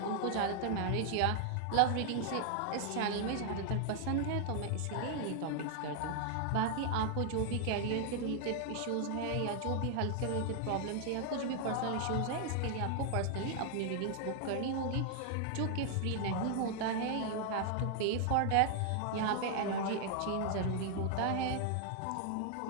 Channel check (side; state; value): both; different; correlation 0.00